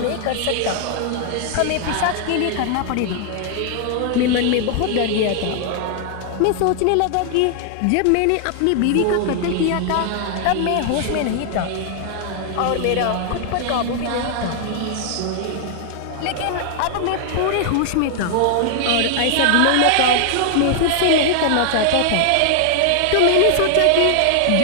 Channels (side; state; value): both; different; correlation 0.00